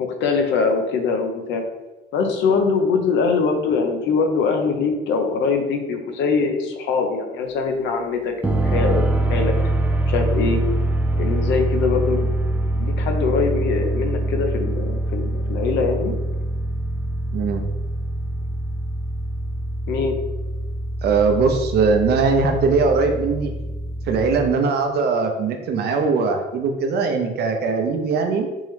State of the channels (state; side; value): normal; both; correlation 0.49